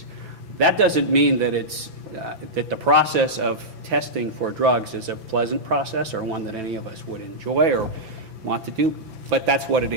That doesn't mean that that the process of testing for drugs is a pleasant process or one that any of us would enjoy or want to do, but that's what it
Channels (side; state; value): left; late; 5.9 ms